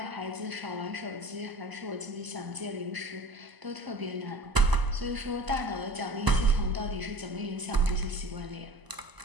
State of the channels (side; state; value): left; late; 1.0 ms